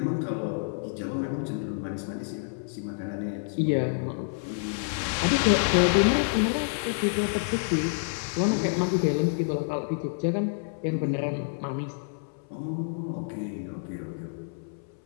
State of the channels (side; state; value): right; silent; 59 dB below the other